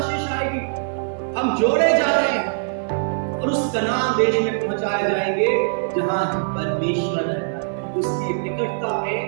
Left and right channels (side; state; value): left; silent; digital silence